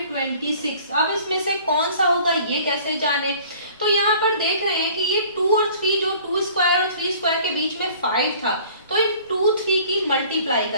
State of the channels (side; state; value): both; inverted; correlation -0.50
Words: 26। अब इसमें से कौन सा होगा ये कैसे जाने? तो यहाँ पर देख रहे हैं कि ये 2 और 3, जो 2 स्क्वायर और 3 स्क्वायर के बीच में 5 था, तो इन 2 3 की मल्टीप्लाई